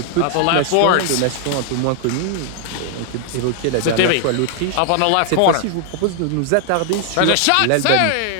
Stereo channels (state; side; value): different; both; correlation 0.00